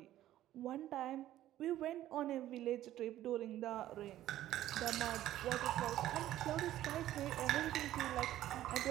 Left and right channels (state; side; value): quieter; left; 13.4 dB